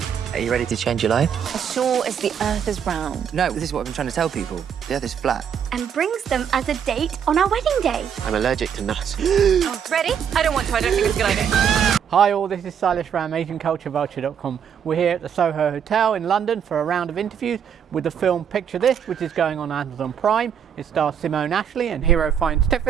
Are you ready to change your life? As sure as the earth is round. No, this is what I've been trying to tell people. The earth is flat. And brings them as a date on our wedding day. I'm allergic to nuts. Oh, ready? I don't want to. I don't think it's a good idea. Hi all, this is Silas from AsianCultureVulture.com. We're here at the Soho Hotel in London for a round of interviews with the film Picture This, which is going on Amazon Prime. It stars Simone Ashley and hero finds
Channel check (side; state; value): left; quieter; 8.0 dB